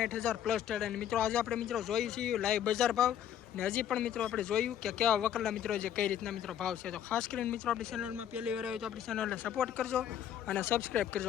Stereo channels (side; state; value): right; quieter; 10.2 dB